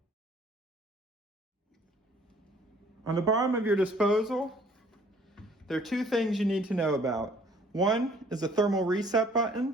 On the bottom of your disposal, there are two things you need to know about. One is a thermal reset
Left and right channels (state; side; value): normal; both; correlation 0.57